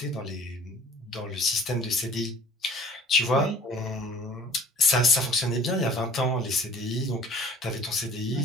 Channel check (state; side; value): normal; both; correlation 0.48